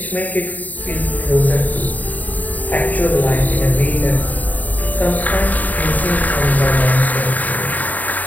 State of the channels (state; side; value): late; right; 0.078 ms